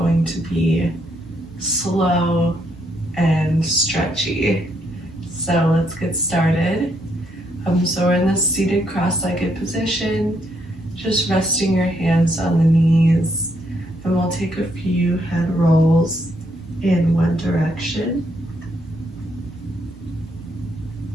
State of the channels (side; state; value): both; normal; correlation 0.74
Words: to be slow and stretchy. So let's get started. So we're in this seated cross-legged position, just resting your hands on the knees, and we'll take a few head rolls in one direction.